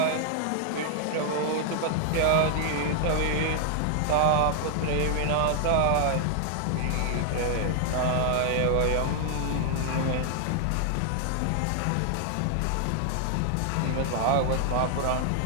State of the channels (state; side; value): different; both; correlation 0.00